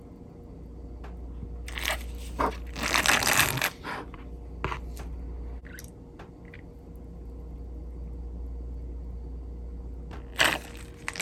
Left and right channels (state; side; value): identical; both; correlation 1.00